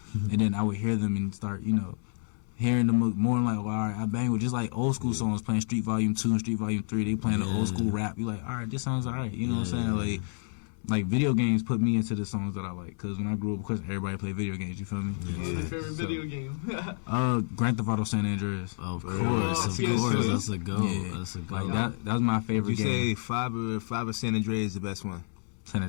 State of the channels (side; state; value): right; silent; 58 dB below the other